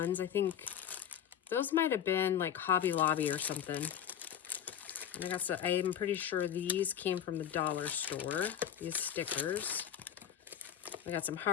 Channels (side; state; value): right; quieter; 9.5 dB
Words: I think those might have been like Hobby Lobby or something. And I got some, I'm pretty sure these came from the dollar store, these stickers. I got some